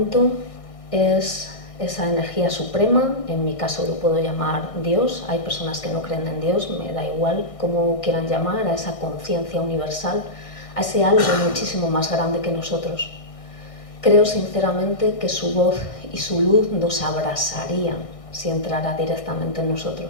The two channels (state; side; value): late; right; 1.6 ms